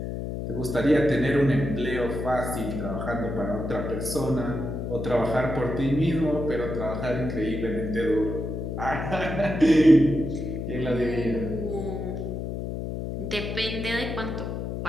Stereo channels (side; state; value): left; noise; hum, 4 dB below the sound